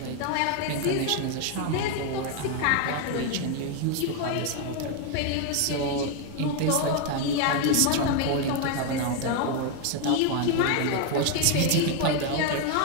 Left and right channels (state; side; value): different; both; correlation 0.01